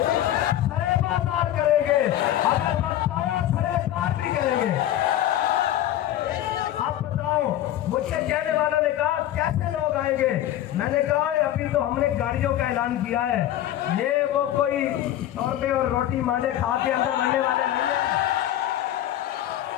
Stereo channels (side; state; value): right; quieter; 12.7 dB